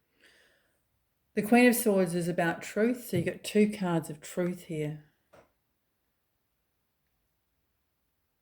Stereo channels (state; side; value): identical; both; correlation 1.00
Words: the Queen of Swords is about truth. So you've got two cards of truth here.